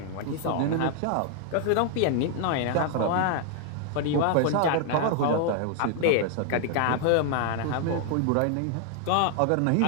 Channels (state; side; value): different; both; correlation 0.00